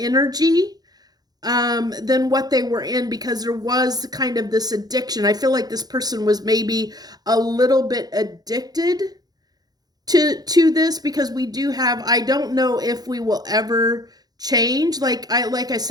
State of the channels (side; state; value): left; late; 0.19 ms